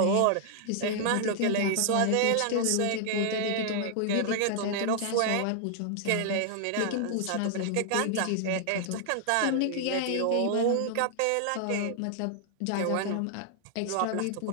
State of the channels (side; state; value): both; different; correlation 0.00